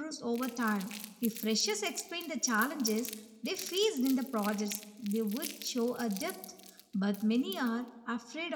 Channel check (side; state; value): both; identical; correlation 1.00